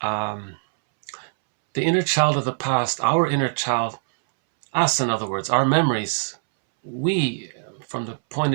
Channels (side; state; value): left; silent; 64 dB below the other